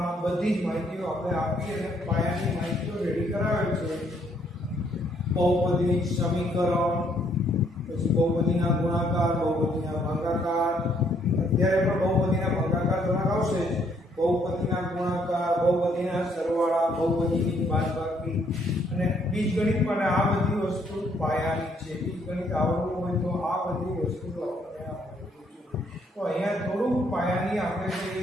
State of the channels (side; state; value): both; normal; correlation 0.68